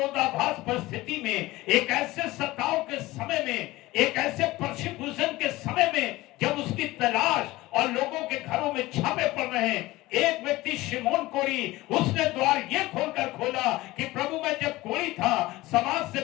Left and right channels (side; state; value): right; quieter; 18.9 dB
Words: परिस्थिति में, एक ऐसे सताव के समय में, एक ऐसे परसिक्यूशन के समय में, जब उसकी तलाश और लोगों के घरों में छापे पड़ रहे हैं, एक व्यक्ति शिमोन कोढ़ी, उसने द्वार ये खोलकर खोला कि प्रभु मैं जब कोढ़ी था, समाज से